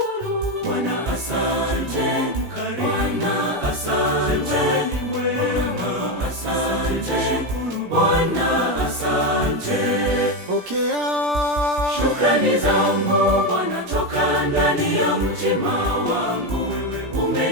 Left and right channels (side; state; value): left; late; 17 ms